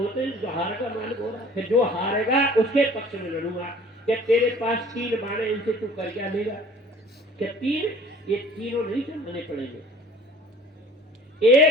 हैं, जो हारेगा मालिक हो रहा है। जो हारेगा उसके पक्ष में लड़ूंगा। क्या तेरे पास 3 बाण, इनसे तू कर क्या लेगा? क्या 3? ये तीनों नहीं चलने पड़ेंगे।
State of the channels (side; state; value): both; normal; correlation 0.49